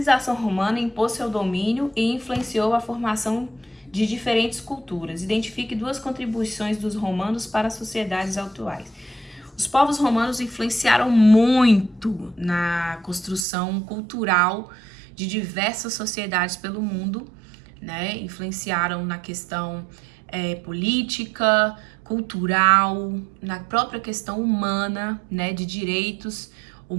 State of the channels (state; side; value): drops out; left; at 13.5 s